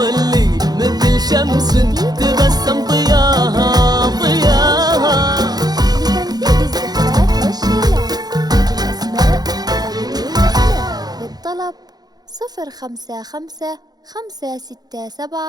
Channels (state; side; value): late; left; 0.19 ms